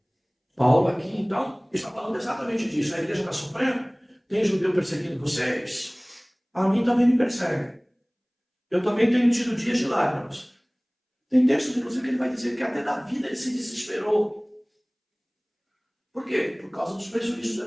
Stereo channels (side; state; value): both; identical; correlation 1.00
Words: Paulo aqui, então, está falando exatamente disso. A igreja está sofrendo, tem judeu perseguindo vocês, a mim também me persegue. Eu também tenho tido dias de lágrimas. Tem textos, inclusive, que ele vai dizer que até da vida ele se desesperou. Por quê? Por causa dos prejuízos do